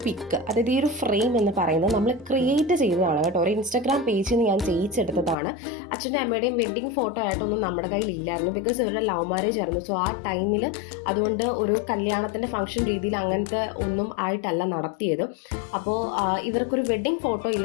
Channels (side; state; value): right; drops out; at 5.4 s